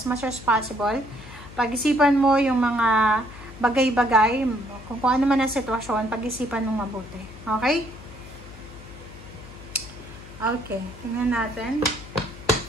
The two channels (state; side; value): noise; left; hum, 16 dB below the sound